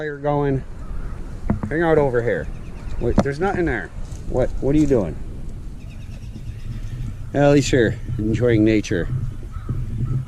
going. Hang out over here. Wait, there's nothing there. What are you doing? At least you're enjoying nature.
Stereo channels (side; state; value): both; identical; correlation 1.00